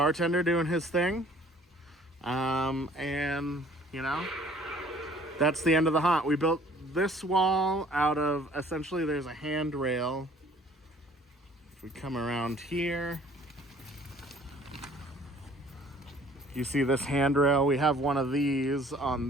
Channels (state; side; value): normal; both; correlation 0.54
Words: doing his thing, and you know, that's the end of the haunt. We built this wall out of, essentially there's a handrail. If we come around here, you see this handrail. We have one of these on